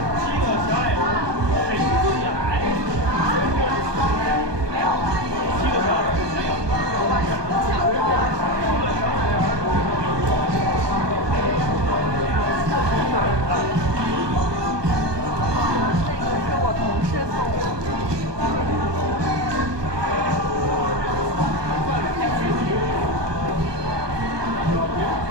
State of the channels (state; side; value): late; left; 1.2 ms